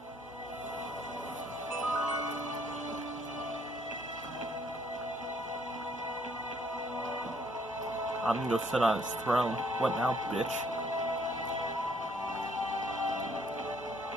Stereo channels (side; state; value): both; normal; correlation 0.66